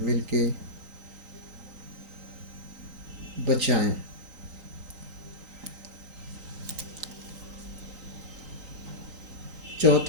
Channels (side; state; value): left; late; 3.9 ms